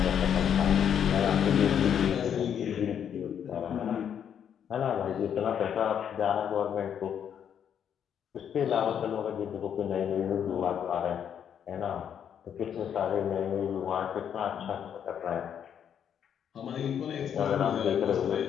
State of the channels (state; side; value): quieter; right; 8.6 dB